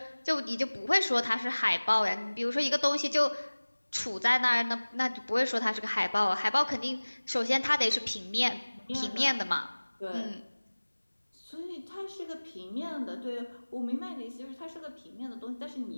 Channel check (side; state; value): both; inverted; correlation -1.00